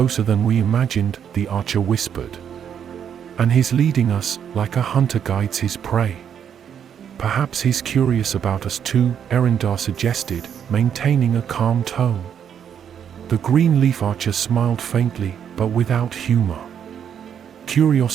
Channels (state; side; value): quieter; left; 8.5 dB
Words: than we imagined," the archer whispered. "And he's leading us, like a hunter guides his prey." "Perhaps he's curious about us too," Eryndar suggested, maintaining a calm tone. The Greenleaf Archer smiled faintly, but without humor.